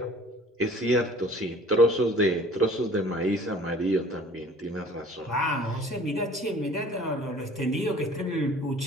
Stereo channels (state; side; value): normal; both; correlation 0.50